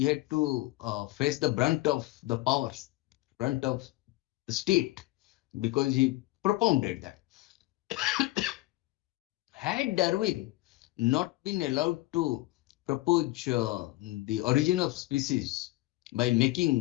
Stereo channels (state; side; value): quieter; right; 19.1 dB